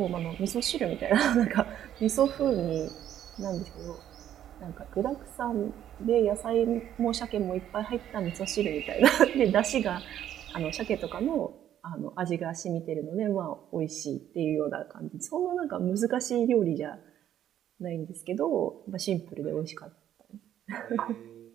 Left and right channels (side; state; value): left; quieter; 10.9 dB